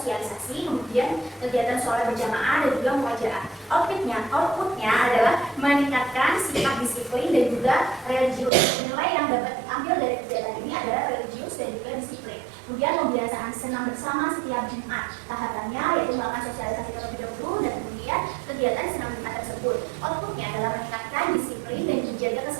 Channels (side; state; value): left; drops out; at 8.5 s